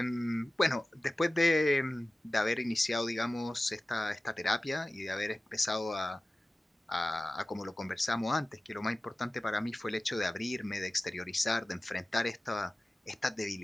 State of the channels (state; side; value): normal; both; correlation 0.97